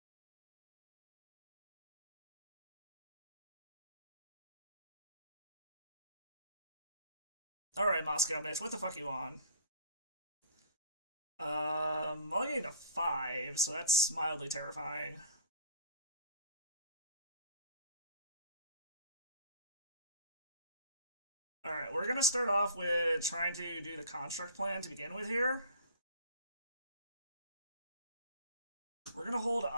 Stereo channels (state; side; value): inverted; both; correlation -0.47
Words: Alright, Moscow Mitch, what the fuck you on? I'll get a 5, so that's mildly terrifying. Alright, we're gonna start off with trying to do the construct plan to begin with here. We're gonna hold